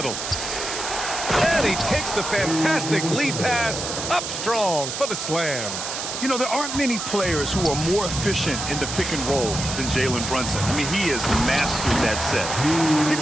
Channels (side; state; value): right; noise; hiss, 5 dB below the sound